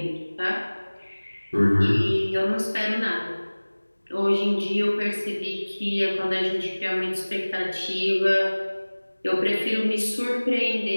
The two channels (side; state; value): both; inverted; correlation -1.00